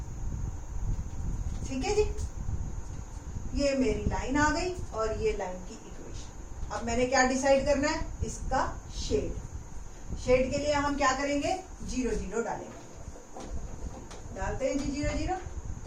ठीक है जी, ये मेरी लाइन आ गई और ये लाइन की इक्वेशन। अब मैंने क्या डिसाइड करना है, इसका शेड। शेड के लिए हम क्या करेंगे, 0 0 डालेंगे। डालते हैं जी 0 0।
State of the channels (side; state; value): both; identical; correlation 1.00